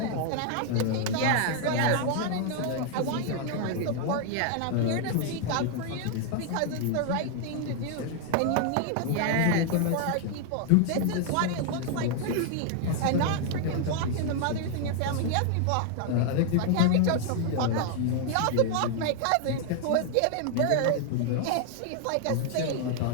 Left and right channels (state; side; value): different; both; correlation 0.00